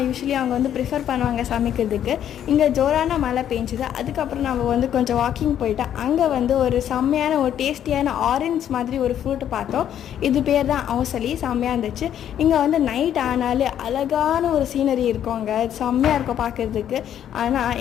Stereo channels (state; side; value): quieter; right; 10.2 dB